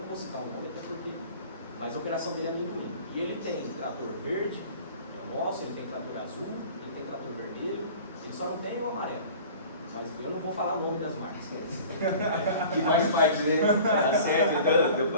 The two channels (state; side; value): inverted; both; correlation -0.43